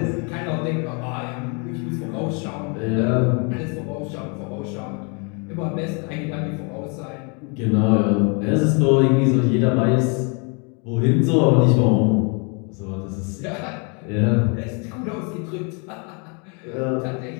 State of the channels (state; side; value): quieter; right; 34.9 dB